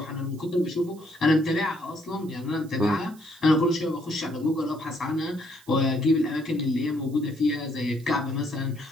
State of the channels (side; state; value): right; noise; hiss, 25 dB below the sound